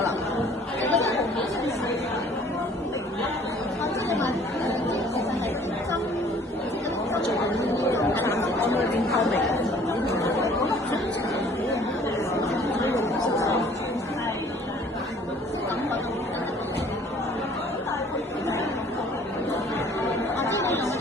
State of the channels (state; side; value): normal; both; correlation 0.55